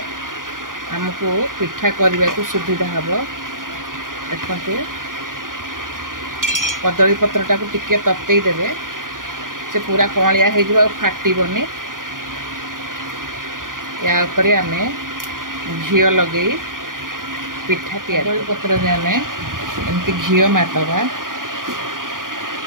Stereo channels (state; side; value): late; left; 0.90 ms